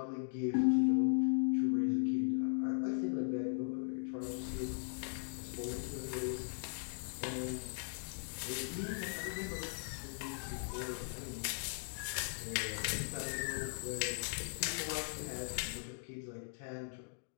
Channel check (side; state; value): right; silent; digital silence